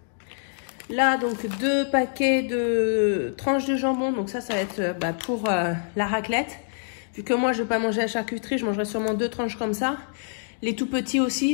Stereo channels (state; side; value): silent; right; digital silence